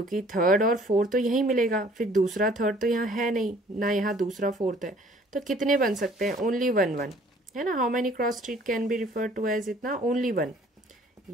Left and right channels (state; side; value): normal; both; correlation 0.56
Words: थर्ड और फोर्थ तो यहीं मिलेगा, फिर दूसरा थर्ड तो यहाँ है नहीं, ना यहाँ दूसरा फोर्थ है। तो कितने बन सकते हैं? ओनली वन वन, है ना। How many cross street can be refer to as इतना? Only one.